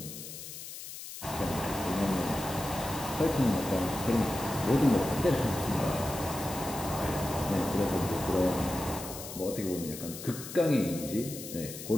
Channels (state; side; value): noise; left; hiss, 11 dB below the sound